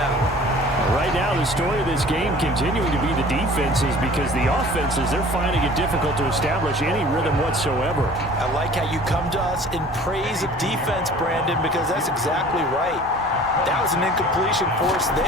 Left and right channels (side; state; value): both; normal; correlation 0.46